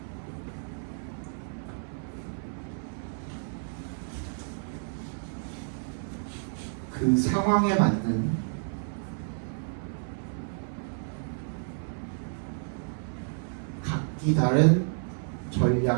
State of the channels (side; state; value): left; silent; 57 dB below the other